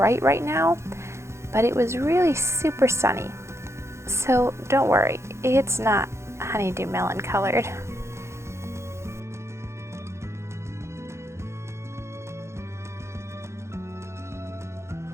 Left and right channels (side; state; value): left; late; 0.13 ms